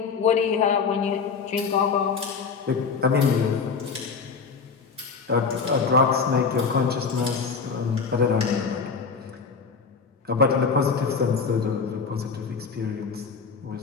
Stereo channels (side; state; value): right; quieter; 5.3 dB